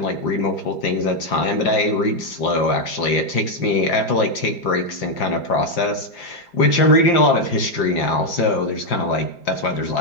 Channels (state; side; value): late; right; 4.9 ms